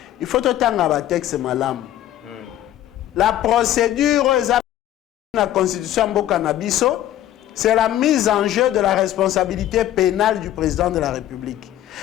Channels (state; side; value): quieter; right; 12.6 dB